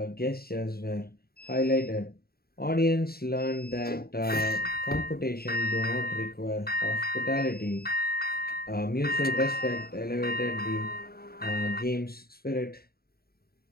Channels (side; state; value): right; late; 0.45 ms